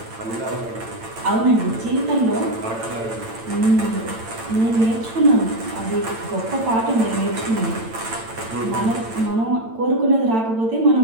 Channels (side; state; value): left; late; 8.9 ms